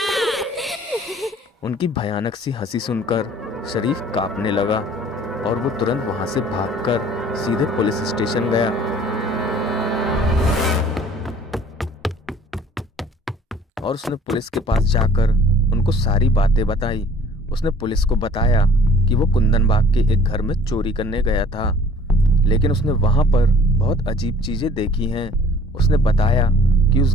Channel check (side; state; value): both; normal; correlation 0.53